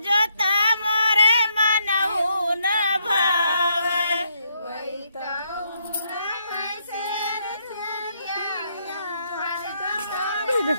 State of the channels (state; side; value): inverted; both; correlation -0.75